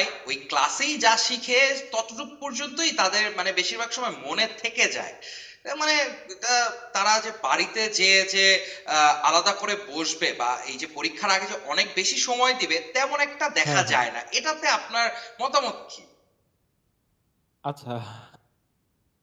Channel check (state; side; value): identical; both; correlation 1.00